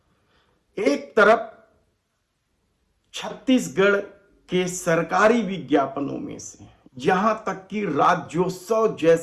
है। एक तरफ छत्तीसगढ़ के सरकारी विज्ञापनों में से यहां तक कि राज्योत्सव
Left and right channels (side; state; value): both; identical; correlation 1.00